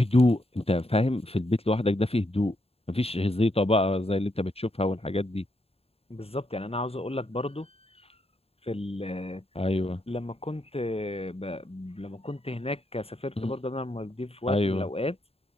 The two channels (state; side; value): late; right; 0.29 ms